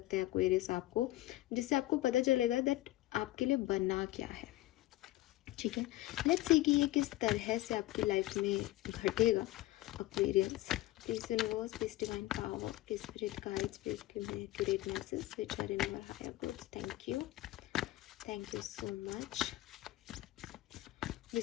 हैं एक्वेरियस आपको, जिससे आपको पता चलेगा दैट आपके लिए बना क्या है। ठीक है, लेट्स सी कि ये किस तरह से आपकी लाइफ में घटेगा Aquarius. Please universe, please divine power, please spirit guides, please give me accurate message which are in your higher goods. Thank you so much.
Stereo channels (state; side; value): quieter; right; 16.5 dB